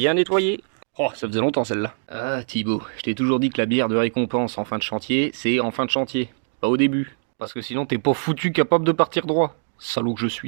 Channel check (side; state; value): left; silent; digital silence